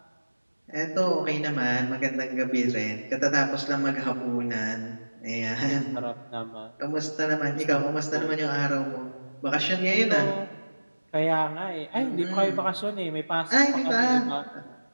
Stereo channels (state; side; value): inverted; both; correlation -1.00